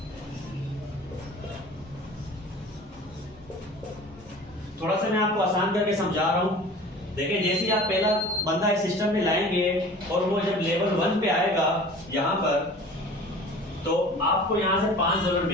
थोड़ा सा मैं आपको आसान करके समझा रहा हूं। देखिए, जैसे ही आप पहला बंदा इस सिस्टम में लाएंगे और वो जब लेवल 1 पे आएगा यहाँ पर, तो आपको यहाँ से $5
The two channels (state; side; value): normal; both; correlation 0.42